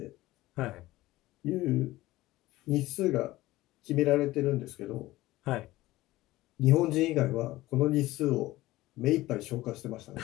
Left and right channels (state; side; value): quieter; right; 17.5 dB